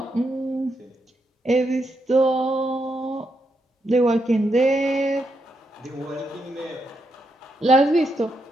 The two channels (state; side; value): normal; both; correlation 0.81